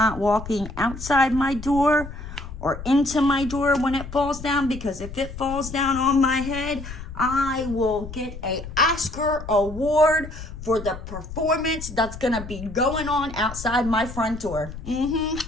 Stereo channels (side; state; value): left; noise; rumble, 11 dB below the sound